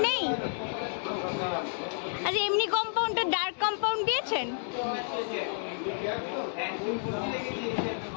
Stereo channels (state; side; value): silent; right; digital silence